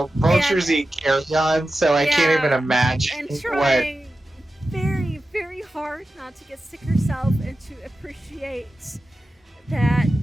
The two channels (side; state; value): both; normal; correlation 0.93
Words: vultures eat carrion, so I can't even imagine And what. trying very, very hard not to get sick herself and to appreciate that